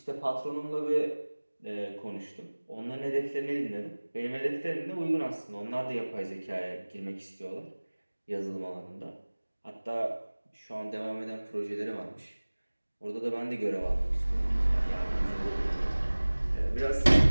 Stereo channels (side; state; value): both; inverted; correlation -1.00